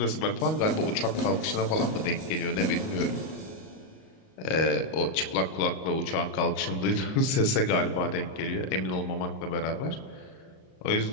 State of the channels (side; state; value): right; late; 38 ms